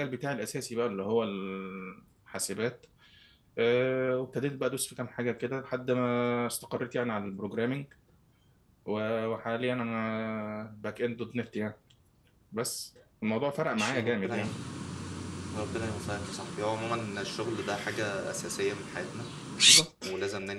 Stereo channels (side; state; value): both; identical; correlation 1.00